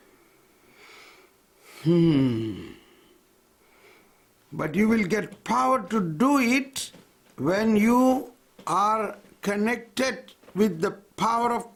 But you will get power to do it when you are connected with the power of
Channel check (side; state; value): both; identical; correlation 1.00